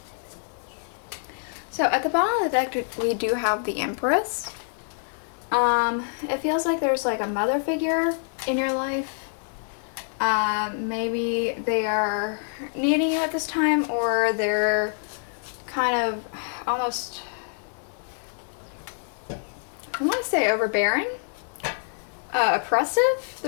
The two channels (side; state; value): right; silent; digital silence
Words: So at the bottom of the deck, we do have the Empress. It feels like there's like a mother figure in your life. Maybe they are needing you at this time, or they're kind of almost, I want to say overbearing, oppressive.